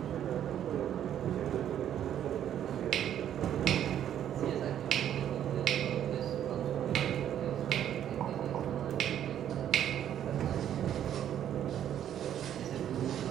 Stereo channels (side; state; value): left; quieter; 10.4 dB